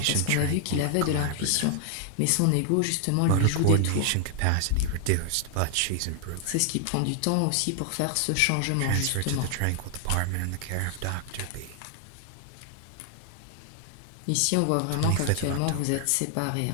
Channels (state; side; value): different; both; correlation 0.00